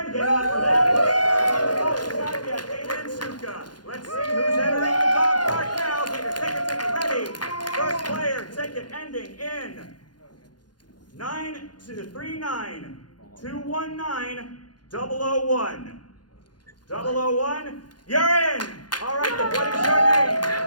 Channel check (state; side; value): late; right; 0.70 ms